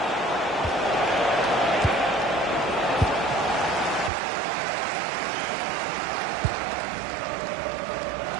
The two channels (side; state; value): left; drops out; at 4.1 s